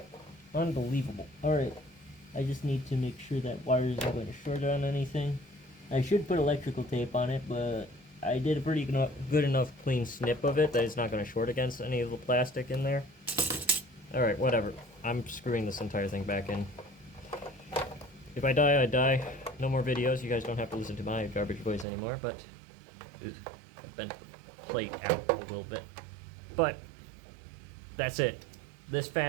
Unbelievable. Alright, I just need to make sure that wire isn't going to short on anything. I should put electrical tape on it, but I did a pretty good enough clean snip of it that it's not going to short against any of the plastic in there. Alright, whatever. I'm screwing this entire thing back in. If I die, I die. No more videos. You guys don't have to listen to my garbage voice anymore, but... I've bent the plate out a little bit. But, that's it. This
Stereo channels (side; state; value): left; drops out; at 21.9 s